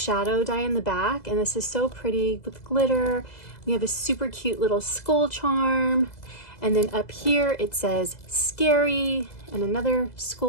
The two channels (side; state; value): right; late; 2.0 ms